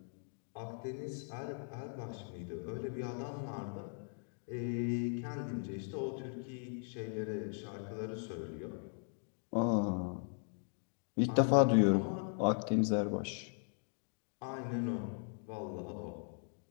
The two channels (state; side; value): silent; right; 52 dB below the other